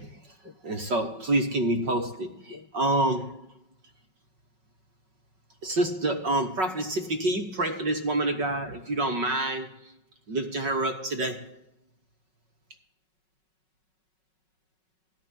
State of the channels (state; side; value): late; left; 5.4 ms